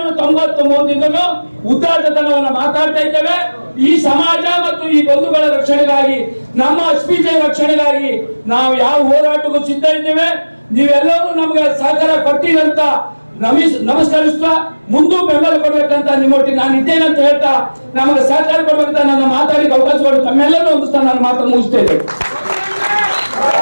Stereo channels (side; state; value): both; inverted; correlation -1.00